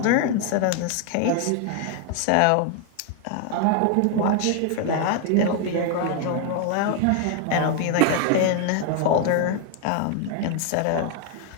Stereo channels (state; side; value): different; both; correlation 0.00